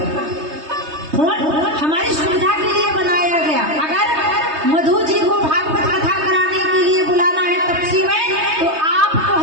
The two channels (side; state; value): left; late; 3.3 ms